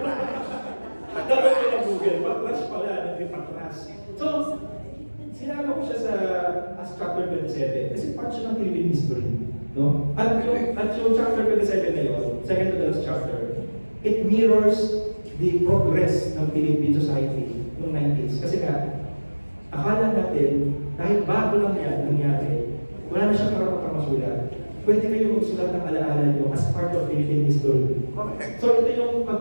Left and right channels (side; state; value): both; inverted; correlation -1.00